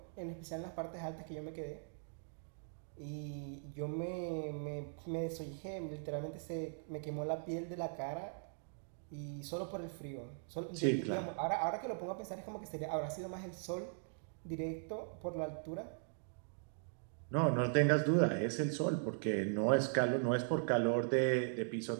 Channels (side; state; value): left; silent; digital silence